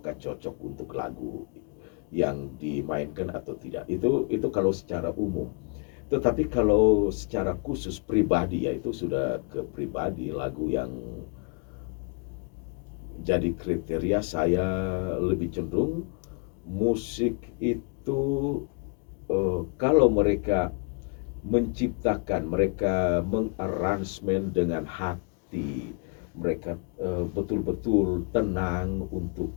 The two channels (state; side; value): quieter; right; 35.9 dB